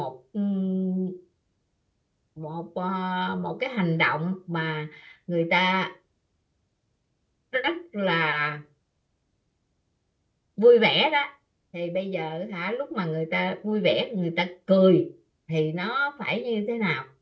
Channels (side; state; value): both; identical; correlation 1.00